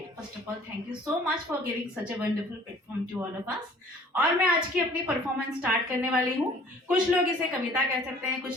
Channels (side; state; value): both; normal; correlation 0.52